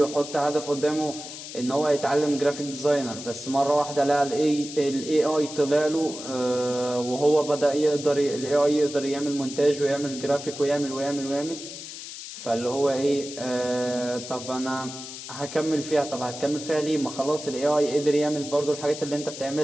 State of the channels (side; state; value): left; noise; hiss, 11 dB below the sound